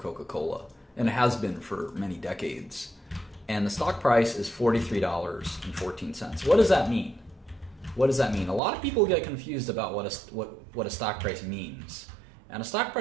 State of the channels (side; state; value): left; drops out; at 8.6 s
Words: and it has been for many decades. And the stock price is $43.14. What does that mean? What does that mean? A lot of people get confused about what a stock price means. And a stock